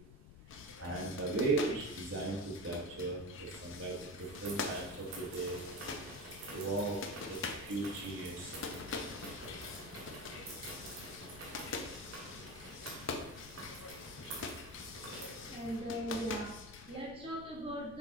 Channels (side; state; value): left; noise; rumble, 16 dB below the sound